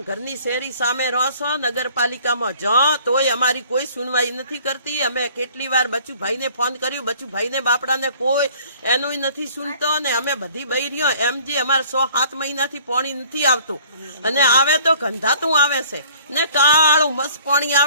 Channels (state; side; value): inverted; both; correlation -0.54